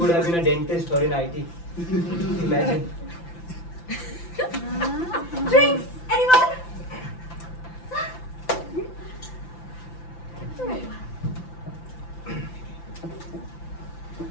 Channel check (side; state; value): right; late; 5.9 ms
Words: have been a dentist or in IT. Imagine. Drinks! Anyone?